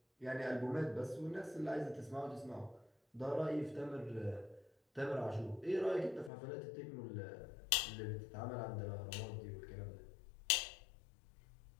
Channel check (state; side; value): drops out; right; at 6.3 s